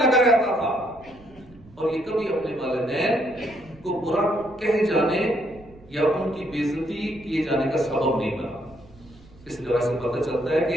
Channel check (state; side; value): noise; right; rumble, 24 dB below the sound